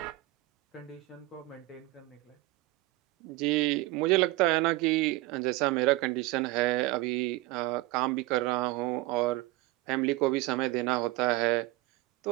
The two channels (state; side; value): quieter; left; 19.6 dB